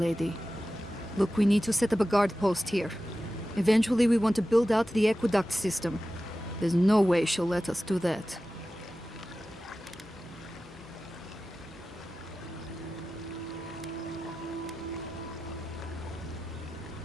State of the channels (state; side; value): normal; both; correlation 0.94